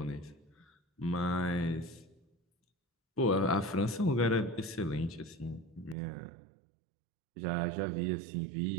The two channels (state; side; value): drops out; left; at 6.0 s